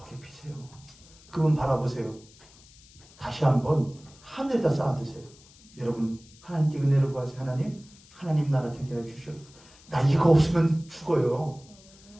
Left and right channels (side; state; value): left; noise; hiss, 25 dB below the sound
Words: 피세요. 그분 바라보세요. 다시 한번 하늘에다 쌓아두세요. 여러분 하나님께 은혜를 구하세요. 하나님 나라 되게 하여 주시옵소서. 나 이거 없으면 죽어요.